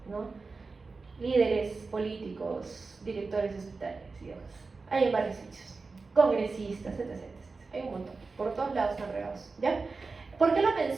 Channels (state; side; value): quieter; left; 4.1 dB